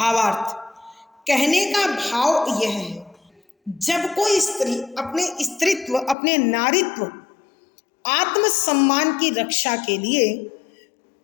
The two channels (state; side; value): drops out; right; at 6.2 s